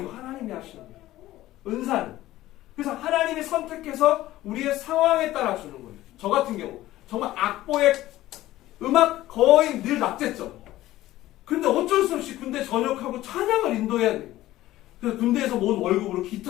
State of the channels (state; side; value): quieter; right; 15.5 dB